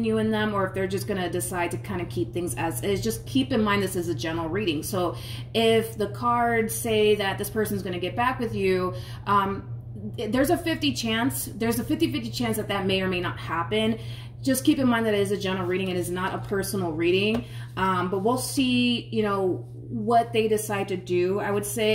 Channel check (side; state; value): both; identical; correlation 1.00